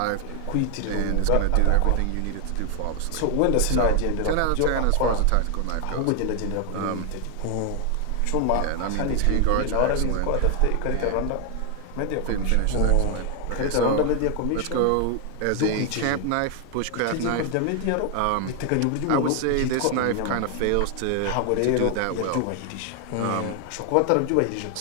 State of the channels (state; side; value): different; both; correlation 0.00